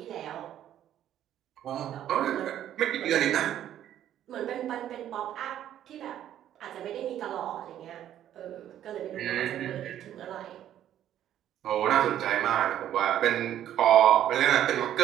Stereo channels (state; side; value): quieter; left; 11.2 dB